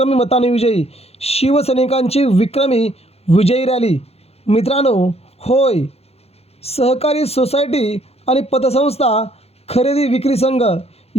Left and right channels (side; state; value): right; late; 0.29 ms